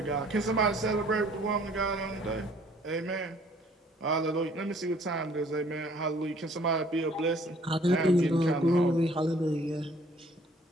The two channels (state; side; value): normal; both; correlation 0.58